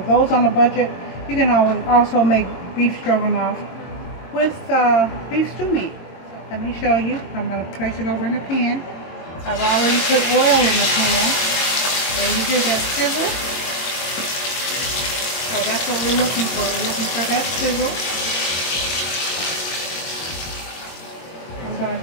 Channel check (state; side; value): late; right; 22 ms